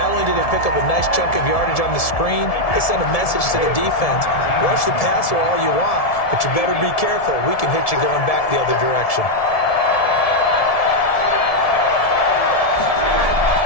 only did they pick up a nice chunk of yardage on the screen, they sent a message to the defense. Rush the passer all you want, but you better be careful. We can hit you going back the other direction.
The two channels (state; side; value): late; right; 1.7 ms